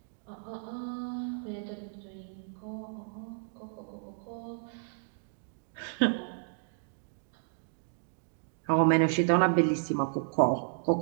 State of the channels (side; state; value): left; silent; digital silence